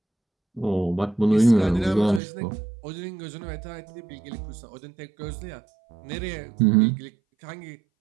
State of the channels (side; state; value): left; drops out; at 2.2 s